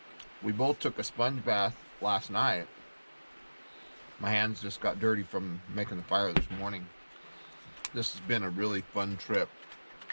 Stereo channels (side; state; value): both; inverted; correlation -1.00